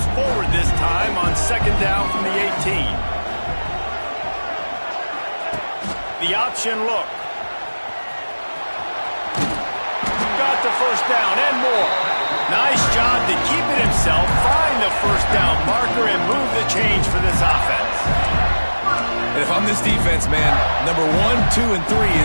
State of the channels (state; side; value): inverted; both; correlation -1.00